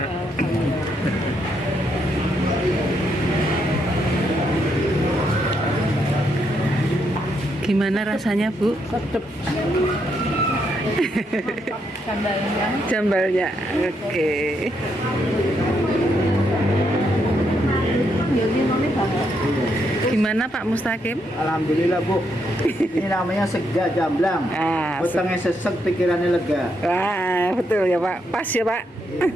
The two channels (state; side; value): normal; both; correlation 0.77